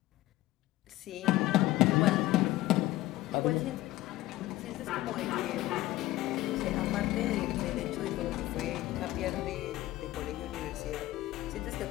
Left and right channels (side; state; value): right; quieter; 16.6 dB